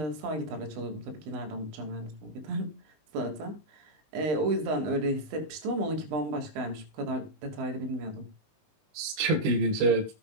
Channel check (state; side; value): late; left; 19 ms